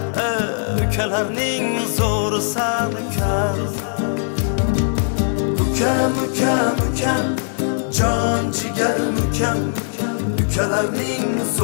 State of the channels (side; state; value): right; silent; digital silence